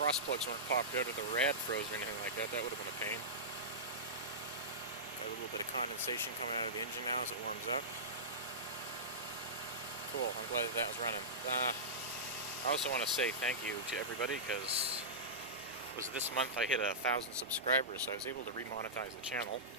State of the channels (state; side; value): normal; both; correlation -0.16